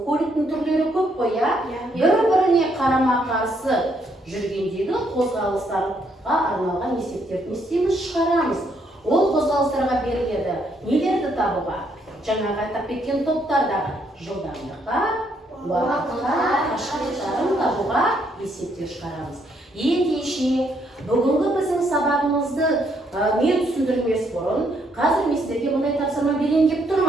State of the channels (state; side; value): normal; both; correlation 0.72